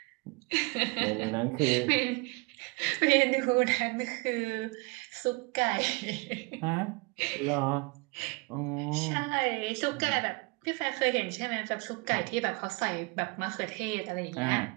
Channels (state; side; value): quieter; left; 28.0 dB